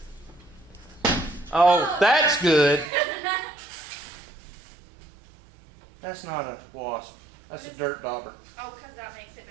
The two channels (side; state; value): left; drops out; at 2.9 s